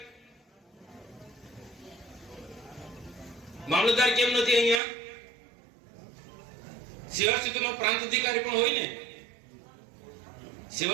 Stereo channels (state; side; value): drops out; left; at 4.8 s